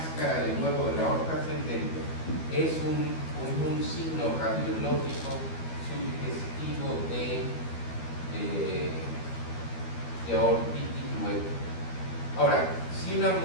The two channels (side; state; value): right; late; 12 ms